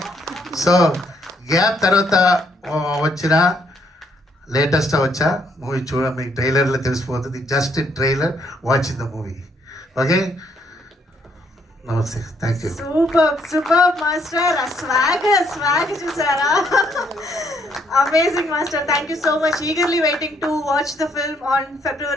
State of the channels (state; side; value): normal; both; correlation 0.70